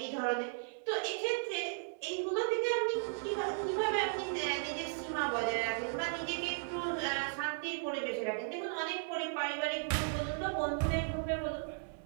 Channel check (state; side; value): silent; left; digital silence